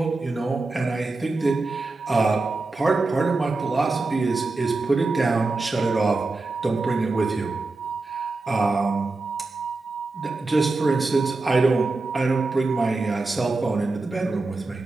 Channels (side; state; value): left; quieter; 3.4 dB